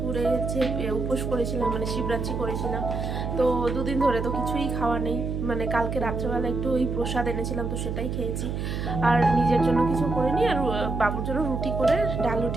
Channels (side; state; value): right; noise; hum, 3 dB below the sound